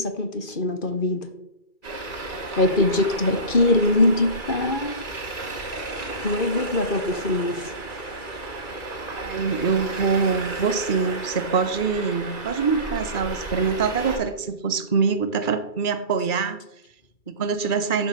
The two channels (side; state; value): right; late; 2.3 ms